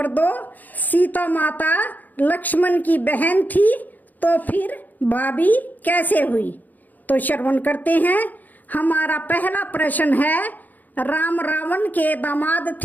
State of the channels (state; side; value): late; right; 0.083 ms